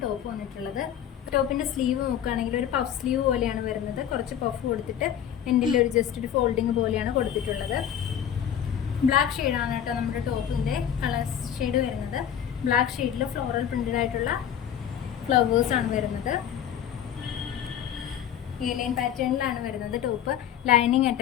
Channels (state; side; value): quieter; right; 9.6 dB